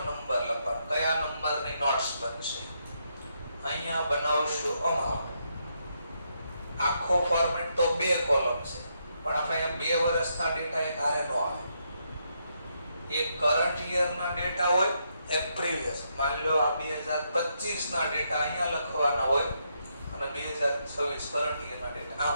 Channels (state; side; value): inverted; both; correlation -0.78